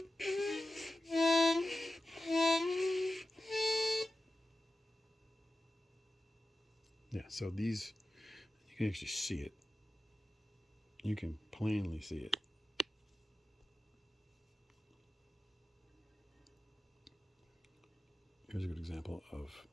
Yeah, so these, you can actually see it. You can plainly see it. Here's a good example of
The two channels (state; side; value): normal; both; correlation 0.94